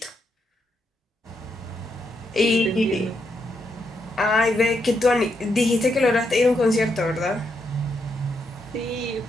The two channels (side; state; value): both; normal; correlation 0.80